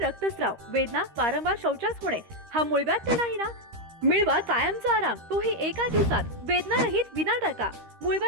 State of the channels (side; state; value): left; late; 13 ms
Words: वेदना, वारंवार शौचास होणे हा मूळव्याध तर नाही ना? मिळवा कायमचा आराम, तोही एका दिवसात, वेदना रहित, विना टाका.